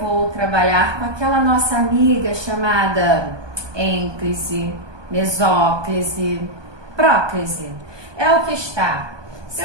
trabalhar com aquela nossa amiga chamada ênclise, mesóclise, próclise. É o que está. Se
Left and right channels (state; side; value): late; left; 1.2 ms